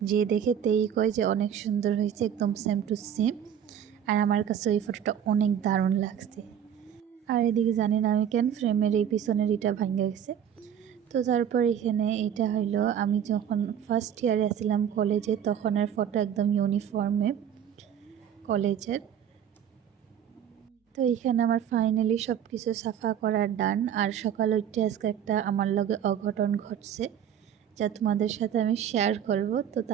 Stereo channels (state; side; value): quieter; left; 9.2 dB